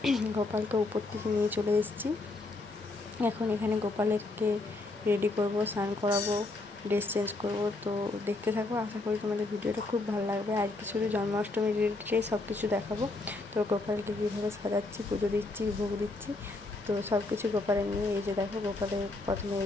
গোপালকে উপর থেকে নিয়ে চলে এসেছি। এখন এখানে গোপালকে রেডি করব, স্নান করাবো, ড্রেস চেঞ্জ করবো। তো দেখতে থাকো, আশা করি তোমাদের ভিডিওটা খুব ভালো লাগবে। আজকে শুধু জন্মাষ্টমীর রিলেটেড সব কিছু দেখাবো। তো গোপালকে কীভাবে সাজাচ্ছি, পুজো দিচ্ছি, ভোগ দিচ্ছি, তো সব কিছু গোপালের নিয়ে। এই যে দেখো, গোপালের প্রথমে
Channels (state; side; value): quieter; right; 3.2 dB